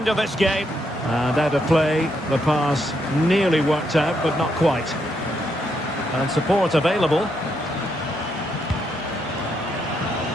of this game. And out of play, the pass nearly worked out, but not quite. And support available.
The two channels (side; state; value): both; normal; correlation 0.78